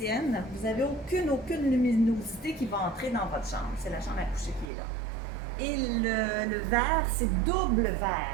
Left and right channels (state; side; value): drops out; left; at 4.7 s